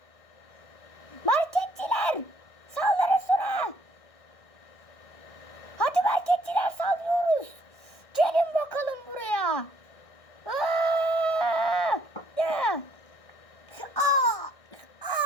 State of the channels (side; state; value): right; late; 1.6 ms